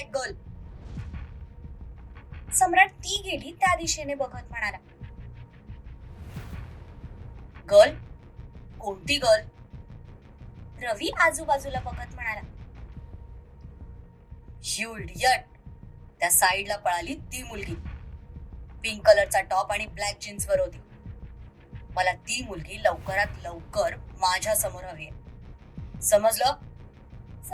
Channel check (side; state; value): both; identical; correlation 1.00